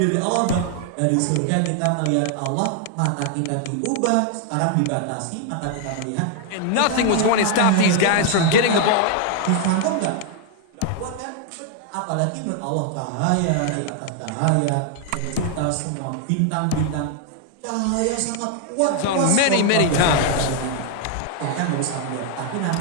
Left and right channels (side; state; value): both; different; correlation 0.00